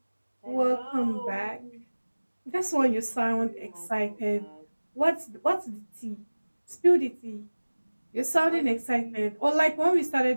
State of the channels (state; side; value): inverted; both; correlation -1.00